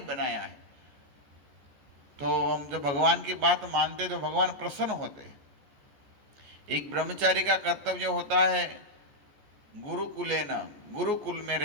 है। तो हम जब भगवान की बात मानते तो भगवान प्रसन्न होते हैं। एक ब्रह्मचारी का कर्तव्य होता है गुरुकुलेन, गुरुकुल में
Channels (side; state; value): left; late; 14 ms